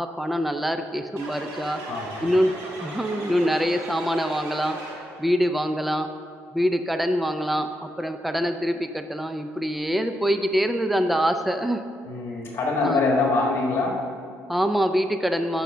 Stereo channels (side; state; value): both; normal; correlation 0.83